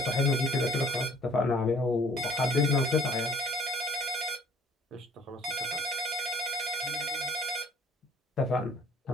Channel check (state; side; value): normal; both; correlation 0.54